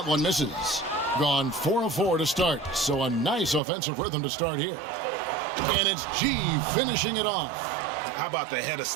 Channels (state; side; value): drops out; left; at 3.6 s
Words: one misses. Gone 4 of 4 to start. So a nice offensive rhythm to start here. And it's G finishing it off. How about the head of